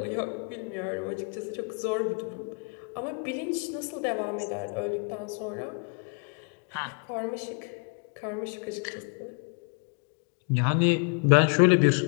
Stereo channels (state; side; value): quieter; right; 35.0 dB